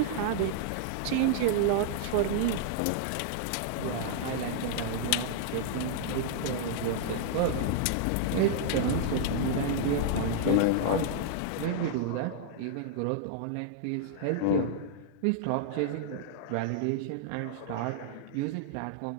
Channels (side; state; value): both; different; correlation -0.01